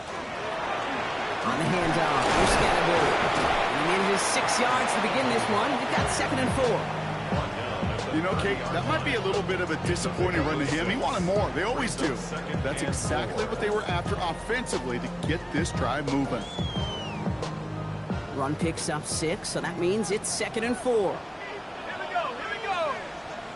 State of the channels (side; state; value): both; identical; correlation 1.00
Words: On the handoff, here's Scatterbury. He manages 6 yards to begin this one. We've got 2nd and 4. You know, Kate, that might be a little bit of a disappointing run to him. He wanted more. They always do. That's exactly what they were after offensively to get this drive moving. Run picks up 6, so that means it's 2nd and 4. Here we go.